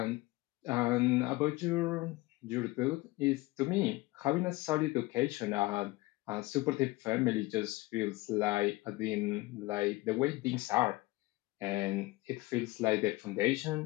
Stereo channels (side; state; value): right; quieter; 20.9 dB